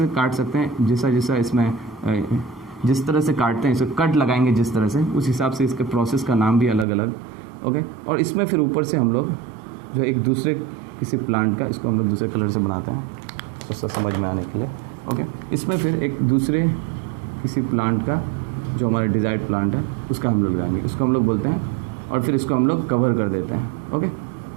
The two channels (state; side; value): drops out; left; at 6.9 s